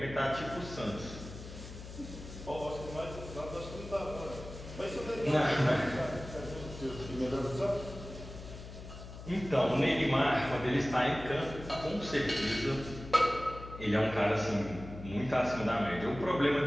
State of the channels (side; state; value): left; noise; hum, 12 dB below the sound